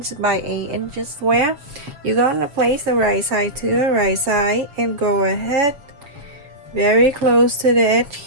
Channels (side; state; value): left; late; 7.2 ms